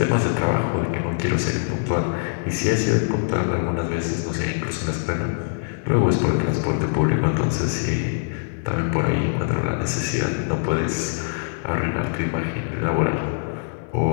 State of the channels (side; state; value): right; silent; 58 dB below the other